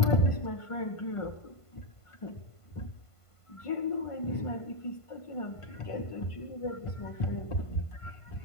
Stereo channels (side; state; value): right; late; 1.5 ms